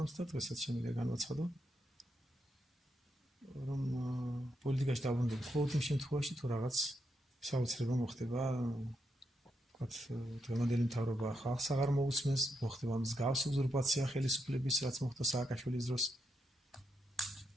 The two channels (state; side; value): normal; both; correlation 0.82